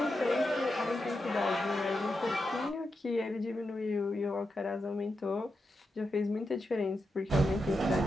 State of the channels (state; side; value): normal; both; correlation 0.87